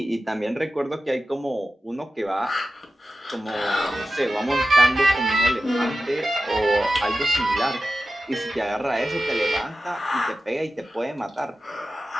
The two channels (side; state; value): both; normal; correlation 0.94